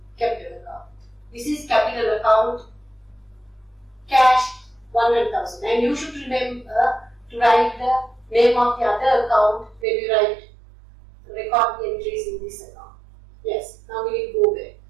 capital account. This is capital account, cash 100,000. And you should remember to write the name of the other account when you record the entries in this account. Yes, now we will go back.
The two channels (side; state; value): left; drops out; at 9.9 s